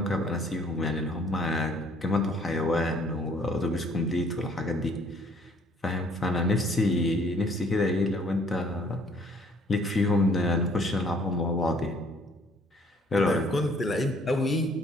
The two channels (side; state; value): both; normal; correlation 0.60